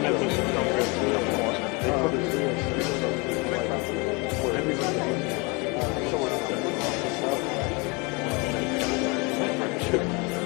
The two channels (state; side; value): quieter; right; 29.3 dB